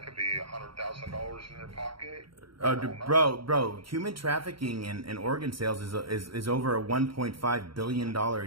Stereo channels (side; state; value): left; late; 0.74 ms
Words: could be $100,000 in their pocket. Bro, human trafficking and organ sales is over a $1.5 billion a